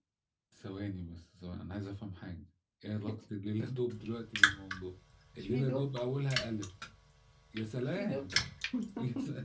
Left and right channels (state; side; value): identical; both; correlation 1.00